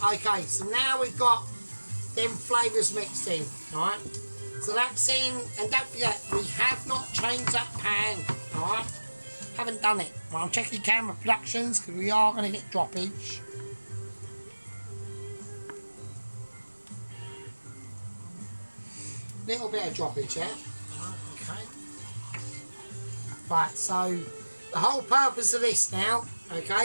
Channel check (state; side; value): inverted; both; correlation -1.00